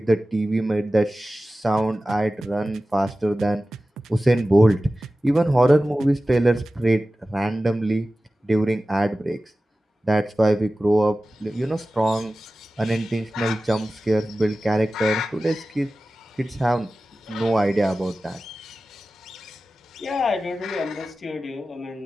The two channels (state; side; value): normal; both; correlation 0.95